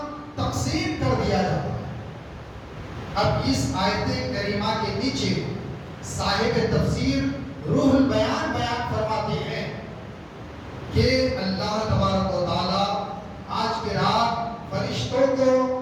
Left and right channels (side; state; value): both; identical; correlation 1.00